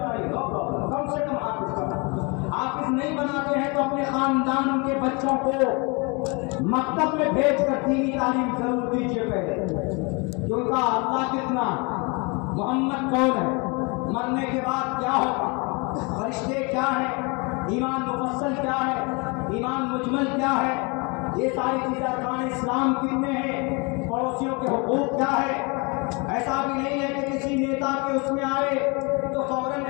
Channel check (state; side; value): quieter; right; 30.2 dB